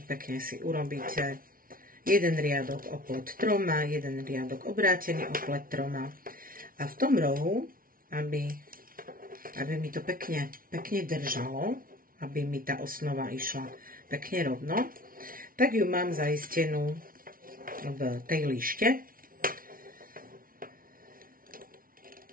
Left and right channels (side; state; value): left; late; 0.42 ms